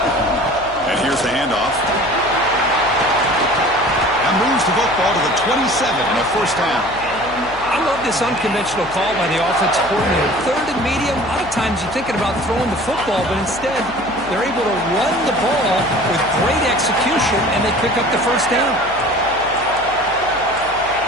And here's the handoff. That moves the football to the 27 and a first down. I'm this unconventional call by the offensive coordinator. Third and medium, a lot of times you're thinking about throwing the football, but instead they're able to run the ball with great execution, and they pick up the first down.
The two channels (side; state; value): left; noise; hum, 19 dB below the sound